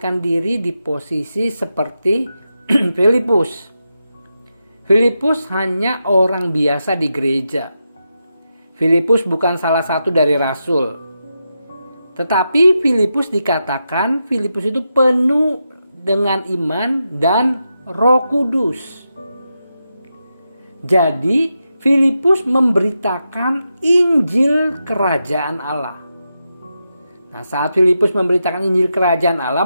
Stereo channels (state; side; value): inverted; both; correlation -0.87